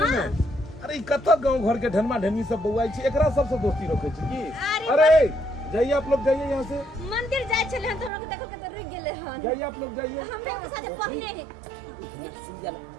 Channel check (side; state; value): left; drops out; at 8.1 s